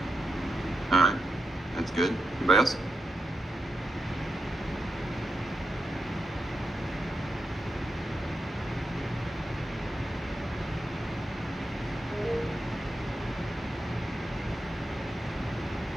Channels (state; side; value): normal; both; correlation 0.87